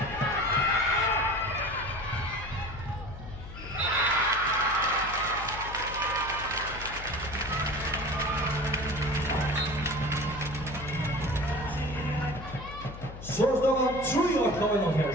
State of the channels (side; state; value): left; noise; hum, 12 dB below the sound